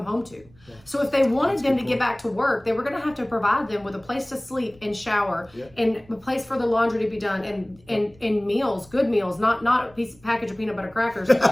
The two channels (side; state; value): right; noise; rumble, 27 dB below the sound